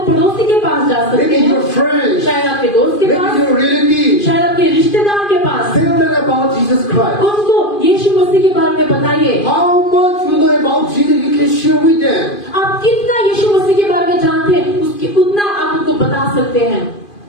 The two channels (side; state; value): right; late; 2.5 ms